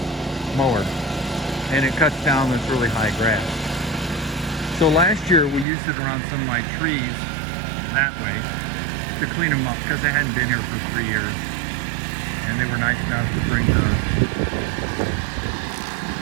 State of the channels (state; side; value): drops out; left; at 5.7 s